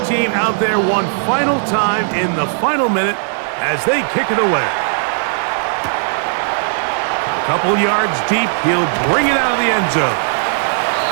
team out there one final time in the final minute as they kick it away. A couple yards deep, he'll bring it out of the end zone.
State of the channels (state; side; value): silent; left; digital silence